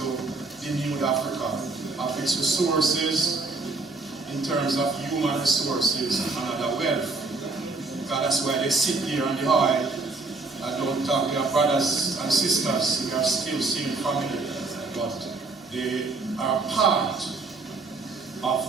denude Africa of its resources in terms of human resources and other wealth. Because that's why they sit there on the oil and don't talk. They are brothers and sisters. They are still same family, but they are part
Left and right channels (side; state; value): left; quieter; 3.7 dB